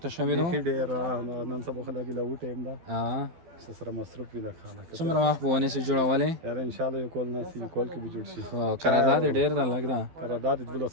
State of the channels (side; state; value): left; late; 12 ms